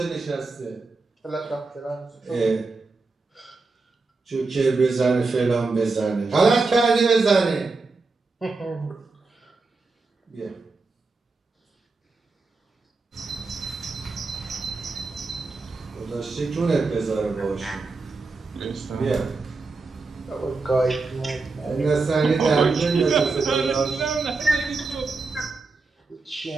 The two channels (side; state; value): left; quieter; 3.9 dB